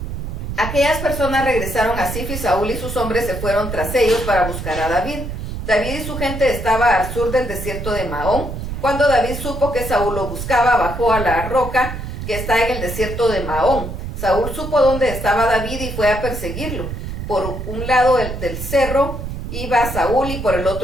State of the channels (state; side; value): noise; right; rumble, 6 dB below the sound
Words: Aquellas personas regresaron a Zif y Saúl y sus hombres se fueron tras ellos para buscar a David. David y su gente estaba al sur del desierto de Maón. Cuando David supo que Saúl lo buscaba, bajó a la roca que está en el desierto de Maón. Saúl supo dónde estaba David y fue a perseguirlo. Por un lado del cerro iba Saúl y por el